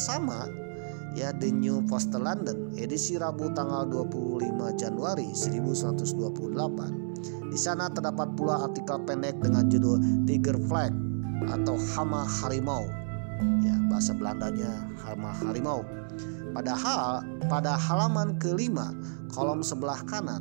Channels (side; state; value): left; silent; 58 dB below the other